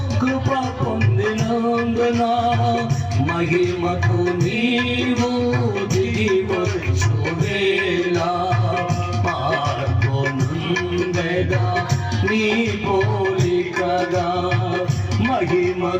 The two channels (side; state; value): both; identical; correlation 1.00